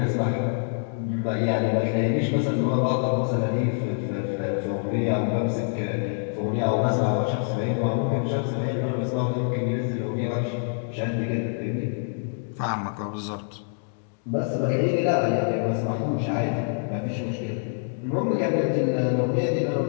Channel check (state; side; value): silent; right; digital silence